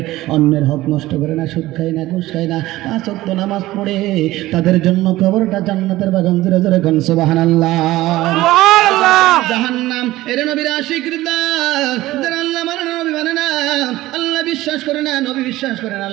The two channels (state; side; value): quieter; left; 16.9 dB